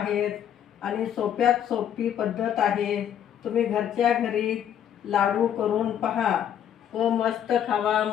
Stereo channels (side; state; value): right; quieter; 9.7 dB